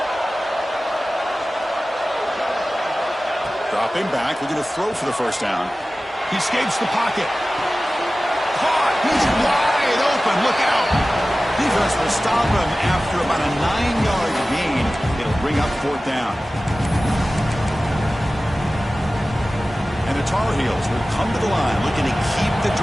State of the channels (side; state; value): both; normal; correlation 0.96